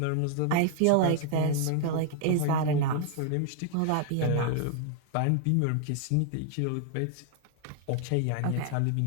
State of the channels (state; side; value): different; both; correlation 0.00